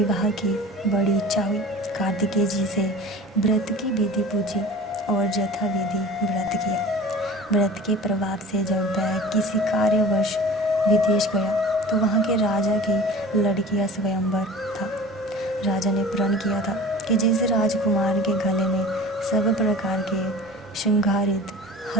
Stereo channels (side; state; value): both; normal; correlation 0.40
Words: की बड़ी इच्छा हुई। कार्तिकेय जी से व्रत की विधि पूछी और यथाविधि व्रत किया। व्रत के प्रभाव से जब वह किसी कार्यवश विदेश गया तो वहाँ के राजा की लड़की का स्वयंवर था। राजा ने प्रण किया था कि जिस राजकुमार के गले में सब प्रकार के श्रृंगारित